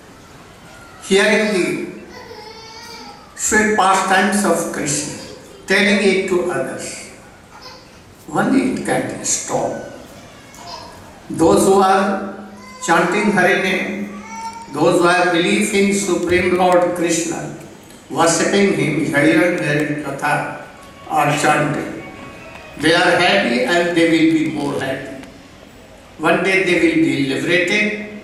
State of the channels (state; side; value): identical; both; correlation 1.00